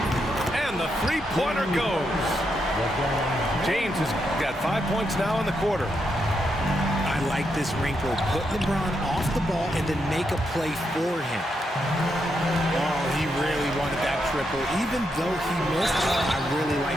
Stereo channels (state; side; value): normal; both; correlation 0.81